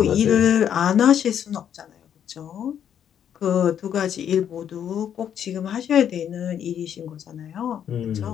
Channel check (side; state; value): right; quieter; 9.2 dB